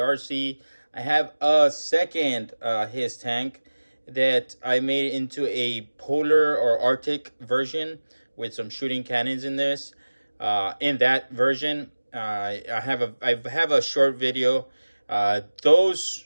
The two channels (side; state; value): both; inverted; correlation -1.00